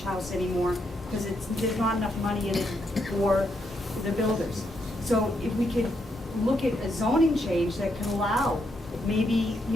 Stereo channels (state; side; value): normal; both; correlation 0.79